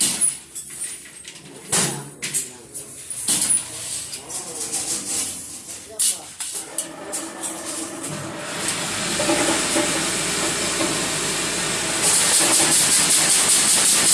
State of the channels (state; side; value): identical; both; correlation 1.00